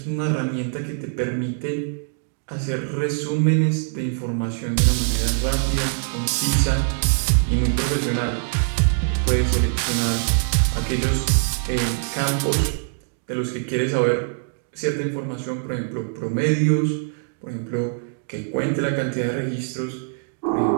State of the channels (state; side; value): silent; left; digital silence